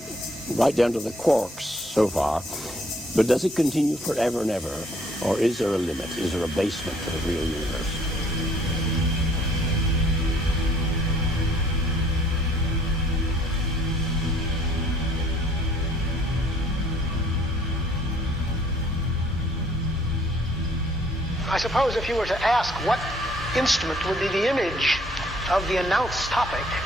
right down to the quarks so far. But does it continue forever and ever? Or is there a limit? Is there a basement to the real universe? I suppose if you were to ask what instrument would be the image of the announced topic,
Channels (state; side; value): normal; both; correlation 0.61